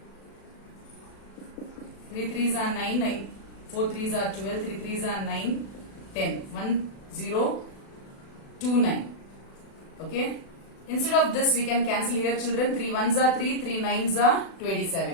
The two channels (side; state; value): right; late; 36 ms